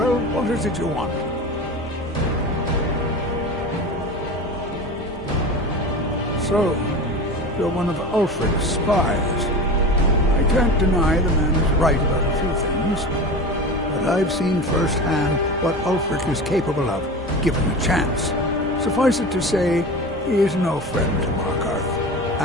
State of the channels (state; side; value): normal; both; correlation 0.30